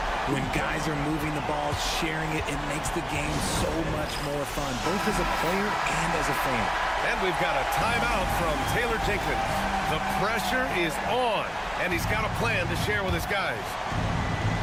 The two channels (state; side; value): identical; both; correlation 1.00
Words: When guys are moving the ball, sharing it, it makes the game so much more fun, both as a player and as a fan. And we've got a timeout from Taylor Jenkins. The pressure is on, and he's got a plan to share with his guys.